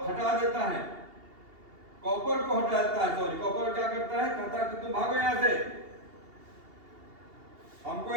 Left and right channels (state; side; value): late; left; 2.8 ms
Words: हटा देता है, कॉपर को हटा देता है। सॉरी, कॉपर क्या करता है? कहता है कि तुम भागो यहां से, हमको